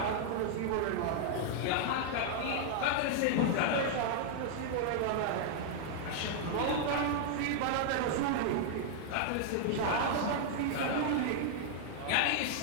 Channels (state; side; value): different; both; correlation -0.01